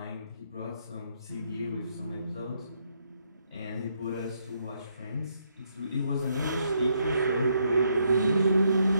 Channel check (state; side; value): inverted; both; correlation -0.75